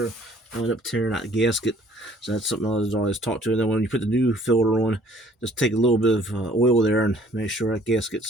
end up tearing out the gasket. So that's something I always talk to. And then when you put the new filter on, just take a little bit of oil there and make sure that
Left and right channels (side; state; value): both; normal; correlation 0.58